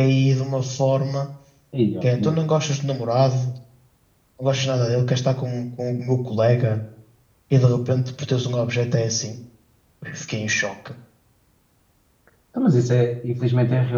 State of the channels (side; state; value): both; identical; correlation 1.00